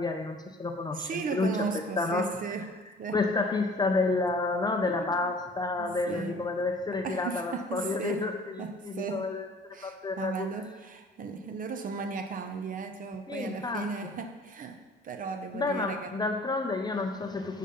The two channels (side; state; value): both; normal; correlation 0.50